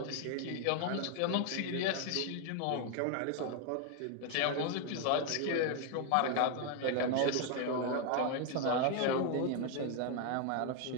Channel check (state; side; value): different; both; correlation 0.00